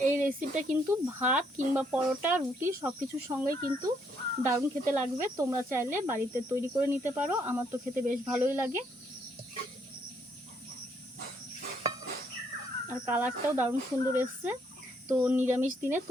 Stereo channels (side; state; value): both; normal; correlation 0.71